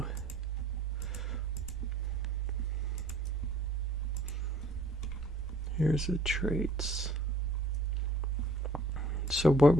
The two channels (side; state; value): both; normal; correlation 0.56